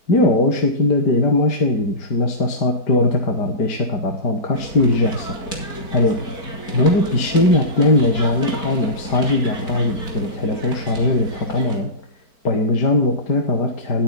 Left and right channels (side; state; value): right; late; 4.5 ms